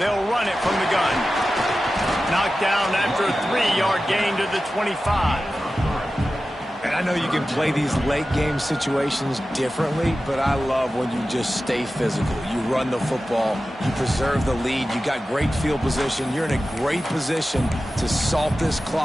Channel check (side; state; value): both; normal; correlation 0.94